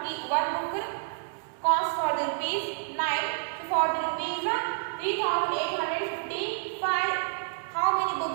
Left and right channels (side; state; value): left; silent; 59 dB below the other